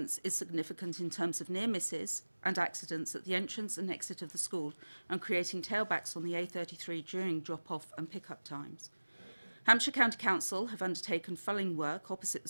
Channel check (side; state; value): both; inverted; correlation -1.00